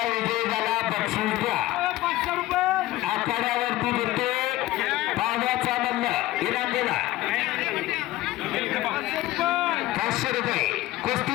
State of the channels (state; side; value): quieter; right; 16.6 dB